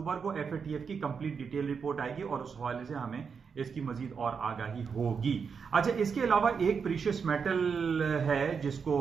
کو FATF کی کمپلیٹ ڈیٹیل رپورٹ آئے گی, اور اس حوالے سے ہمیں اس کی مزید اور آگاہی ہوگی. اچھا, اس کے علاوہ ایک پریشیس میٹل ہے جس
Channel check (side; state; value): left; quieter; 6.0 dB